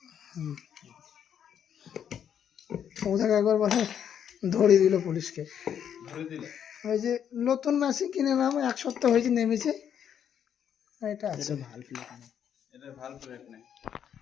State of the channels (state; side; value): quieter; right; 8.8 dB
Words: ওটাকে একবার বলে ধরিয়ে দিল পুলিশকে। ওই যে নতুন মেশিন কিনে নাম 1 সপ্তাহ হয়েছে, নেমেছে। এটা আছে,